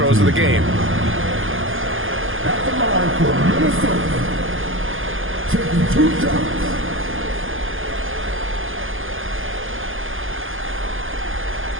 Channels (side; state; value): left; late; 0.59 ms